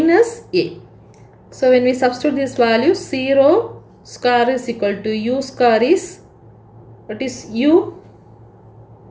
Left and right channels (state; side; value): identical; both; correlation 1.00